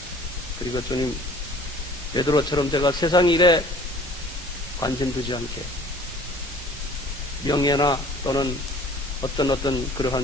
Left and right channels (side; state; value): both; normal; correlation 0.50